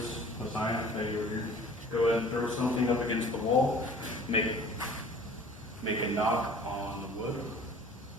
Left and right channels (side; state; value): both; normal; correlation 0.48